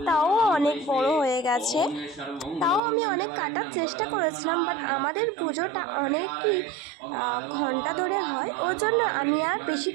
তাও অনেক বড় হয়ে গেছে। তাও আমি অনেক কাটার চেষ্টা করেছিলাম, বাট আমাদের পুজোটা অনেকই ঘন্টা ধরে হয়, ওর জন্য আমি আর বেশি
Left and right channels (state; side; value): drops out; left; at 2.8 s